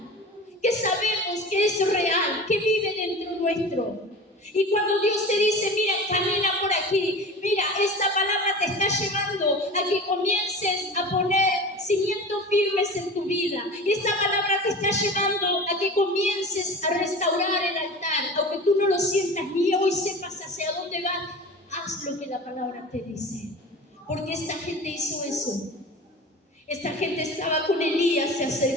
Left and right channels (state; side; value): normal; both; correlation 0.35